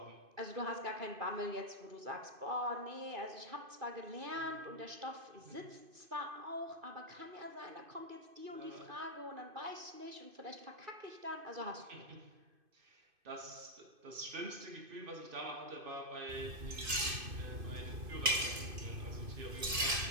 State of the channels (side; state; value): left; late; 2.5 ms